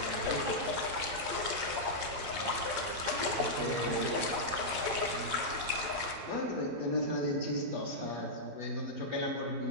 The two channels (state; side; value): late; left; 11 ms